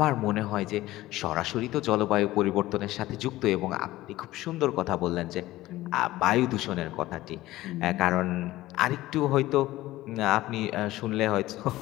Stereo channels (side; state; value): right; quieter; 16.7 dB